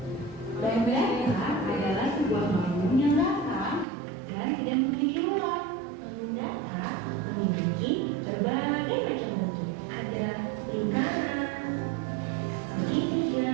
Bangun datar adalah sebuah bangun yang rata dan tidak memiliki ruang. Bangun datar memiliki berbagai macam bentuk. Ada lingkaran,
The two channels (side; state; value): left; drops out; at 3.9 s